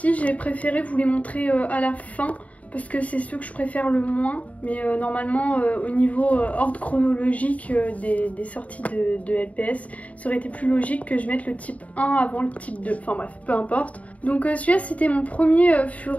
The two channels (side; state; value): right; late; 0.068 ms